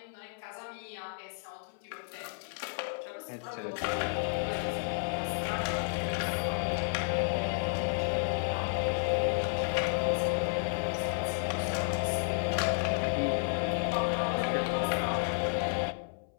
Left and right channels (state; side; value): silent; right; 56 dB below the other